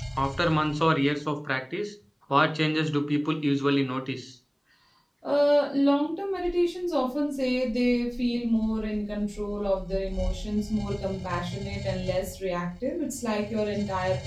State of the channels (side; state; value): both; identical; correlation 1.00